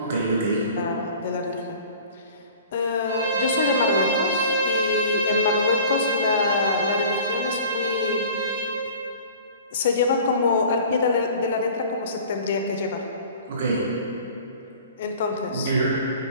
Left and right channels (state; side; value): inverted; both; correlation -0.45